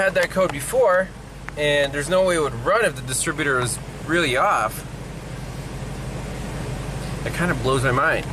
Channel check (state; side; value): identical; both; correlation 1.00